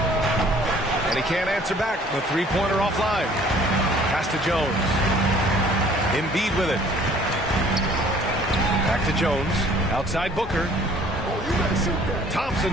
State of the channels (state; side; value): normal; both; correlation 0.55